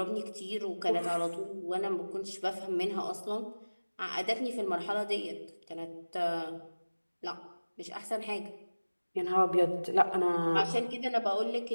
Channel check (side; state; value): both; inverted; correlation -1.00